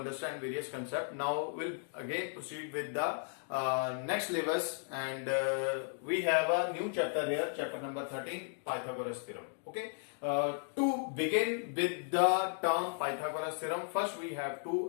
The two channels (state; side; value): silent; right; 54 dB below the other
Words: various concepts. Now we'll again proceed with the next syllabus, and we have a new chapter here, chapter number 13, Pythagoras Theorem. Okay. To begin with the term Pythagoras Theorem, first we have